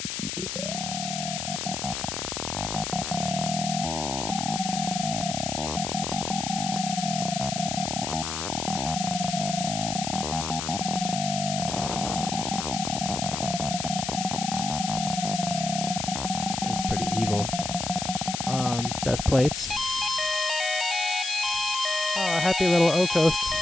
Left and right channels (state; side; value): noise; left; hiss, 4 dB below the sound